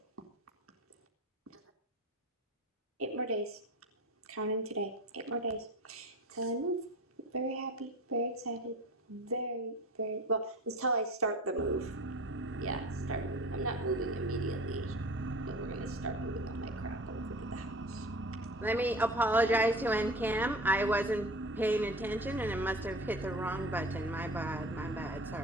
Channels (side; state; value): both; normal; correlation 0.37